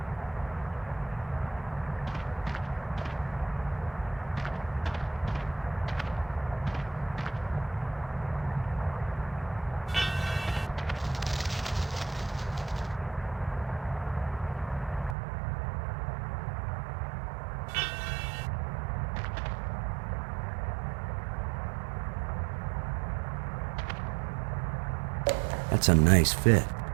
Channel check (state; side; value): drops out; left; at 15.2 s